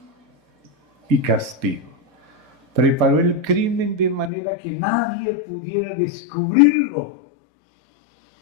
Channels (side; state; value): right; drops out; at 4.3 s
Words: y Castigo. Preparó el crimen de manera que nadie pudiera descubrirlo.